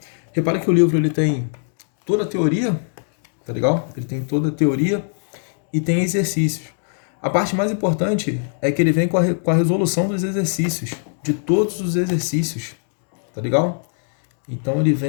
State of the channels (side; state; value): right; silent; digital silence